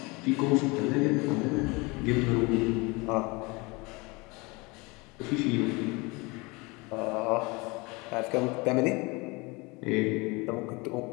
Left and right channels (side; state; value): right; quieter; 26.1 dB